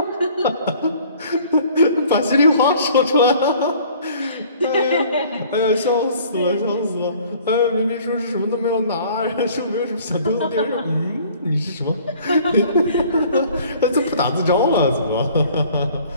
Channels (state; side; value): inverted; both; correlation -0.53